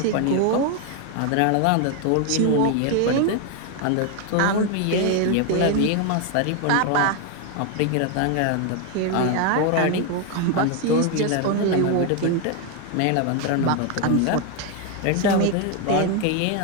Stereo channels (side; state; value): both; different; correlation 0.01